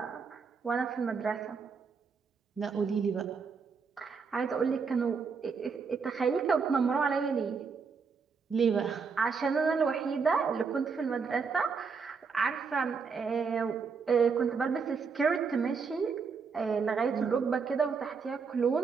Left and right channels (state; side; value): quieter; left; 5.4 dB